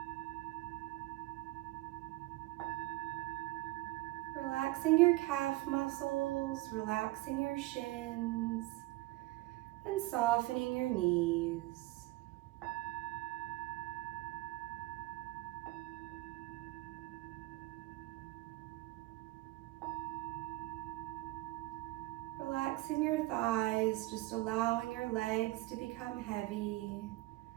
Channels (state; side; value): quieter; left; 19.6 dB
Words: Relaxing your calf muscles, relaxing your shins, and softening your knees. Relaxing your thighs, just allowing your legs to become heavy